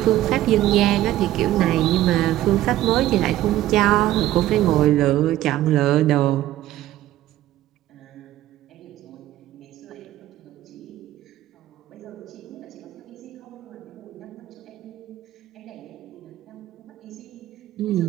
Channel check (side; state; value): left; quieter; 14.2 dB